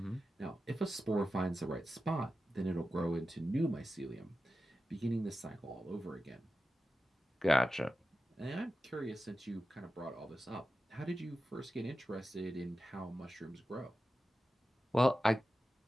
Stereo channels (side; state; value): both; normal; correlation 0.92